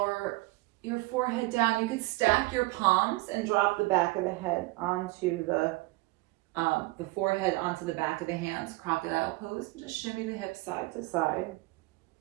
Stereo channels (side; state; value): left; quieter; 22.7 dB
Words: your forehead down. You could stack your palms and drop the back of the head onto the forehead onto the back of the hands, crocodile pose, and just shimmy the hips side to side.